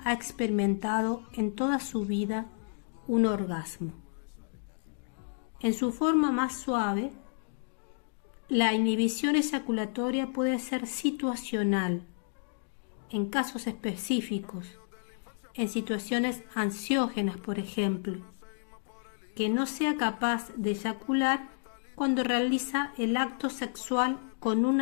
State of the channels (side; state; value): right; silent; digital silence